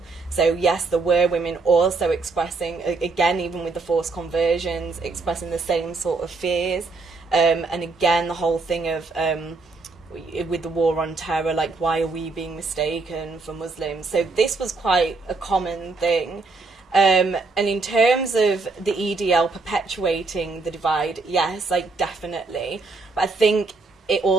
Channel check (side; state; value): left; quieter; 3.9 dB